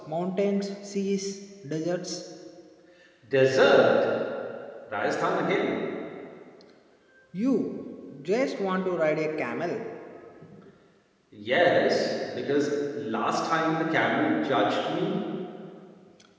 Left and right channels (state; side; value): identical; both; correlation 1.00